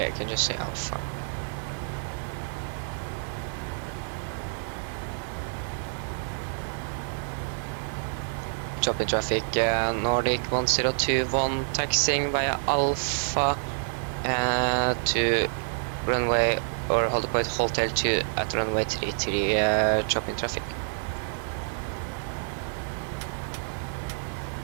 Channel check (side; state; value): left; silent; digital silence